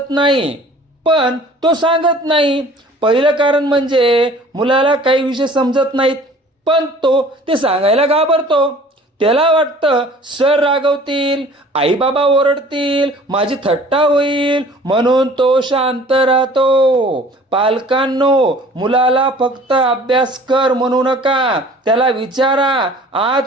नाही पण तो सांगत नाही. पहिलं कारण म्हणजे मुलाला काही विषय समजत नाहीत पण तो ते सांगायला घाबरतो. त्याला वाटतं सर रागवतील, आई बाबा ओरडतील, माझी थट्टा होईल, म्हणून तो शांत राहतो. पालकांनो, मुलाला फक्त अभ्यास कर म्हणू नका, त्याला विचारा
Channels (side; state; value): both; normal; correlation 0.49